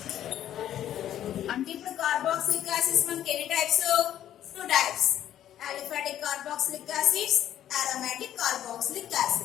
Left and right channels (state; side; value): quieter; right; 11.3 dB